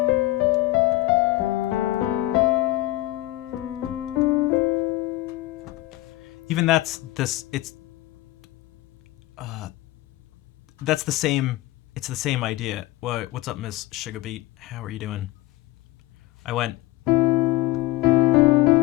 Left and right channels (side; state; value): right; quieter; 17.6 dB